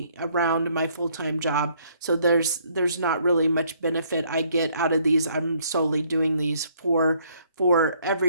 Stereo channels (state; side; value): inverted; both; correlation -0.66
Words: around my full-time job, so there's not really much benefit I get out of these. I'm solely doing these for